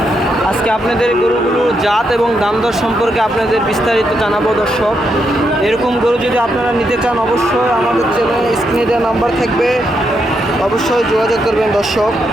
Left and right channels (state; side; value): normal; both; correlation 0.80